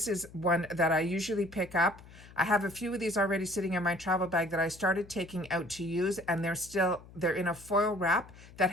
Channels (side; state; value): left; noise; hum, 20 dB below the sound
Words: is one that I usually pick up. I have a few of these already sitting in my travel bag that I started taking out to use, and they're in a foil wrap